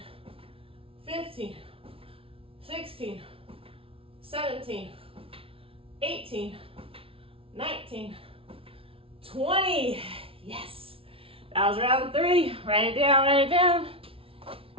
15, 16, 17, 18, 19, 20. Yes. That was round 3. Write it down, write it down.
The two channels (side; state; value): left; late; 0.26 ms